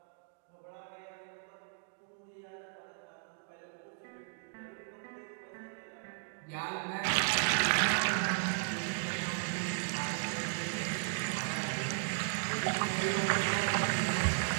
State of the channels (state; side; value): silent; left; digital silence